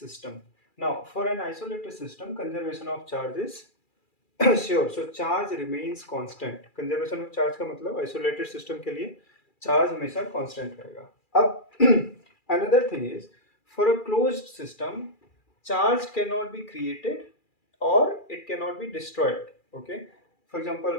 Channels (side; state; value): right; late; 2.4 ms